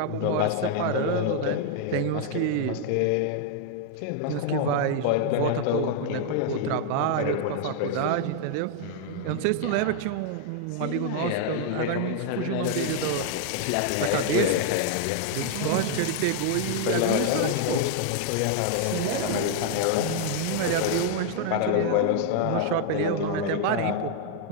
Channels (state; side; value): different; both; correlation 0.00